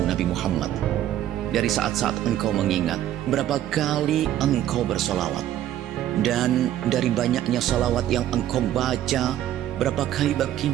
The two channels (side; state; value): left; quieter; 12.3 dB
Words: Nabi Muhammad. Dari saat-saat engkau mengingat, berapa kali engkau bersolawat. Dan dari banyaknya salawat yang engkau baca, berapa kali